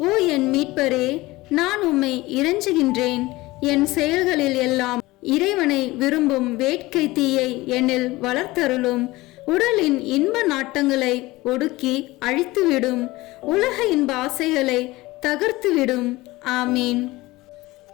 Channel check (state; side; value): quieter; right; 19.9 dB